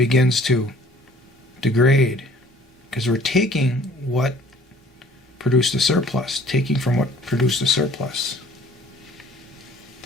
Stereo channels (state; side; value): normal; both; correlation 0.54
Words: to degrade, because we're taking what produced the surplus, taking from what produced the surplus.